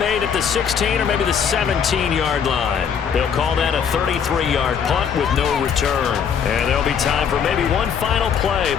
at the 16 or maybe the 17-yard line. They'll call that a 33-yard punt with no return. And there'll be time for maybe one final play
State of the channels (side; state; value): right; quieter; 7.3 dB